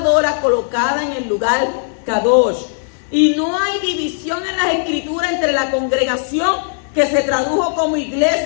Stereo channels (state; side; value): silent; right; digital silence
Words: colocada en el lugar Kadosh. Y no hay división en las escrituras entre la congregación que se tradujo como